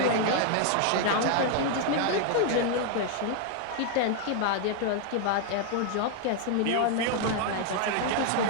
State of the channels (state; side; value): different; both; correlation 0.00